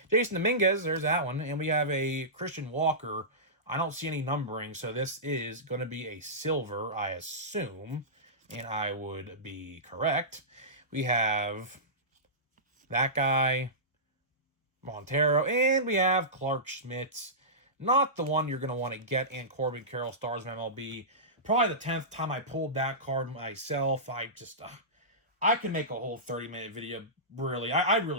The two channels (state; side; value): normal; both; correlation -0.19